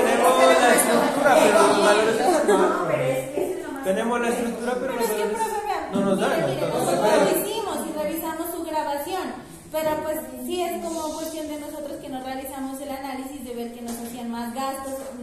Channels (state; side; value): identical; both; correlation 1.00